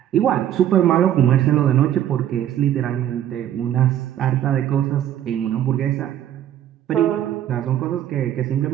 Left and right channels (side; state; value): left; quieter; 11.3 dB